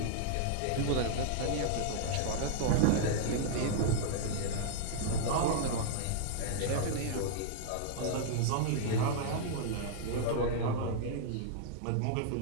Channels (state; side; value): different; both; correlation -0.01